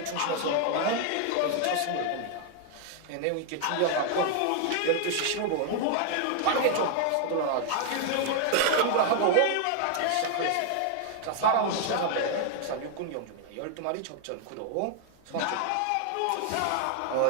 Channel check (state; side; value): different; both; correlation 0.00